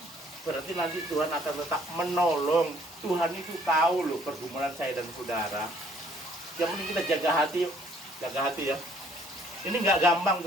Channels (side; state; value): both; normal; correlation 0.62